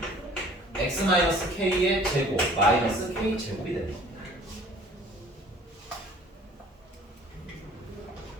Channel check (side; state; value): both; normal; correlation 0.51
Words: x 마이너스 k의 제곱 마이너스 k 제곱이 됩니다.